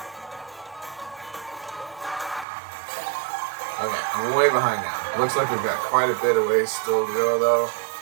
Okay, I'm way behind now. Looks like we've got quite a bit of ways still to go though.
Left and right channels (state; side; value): drops out; left; at 2.5 s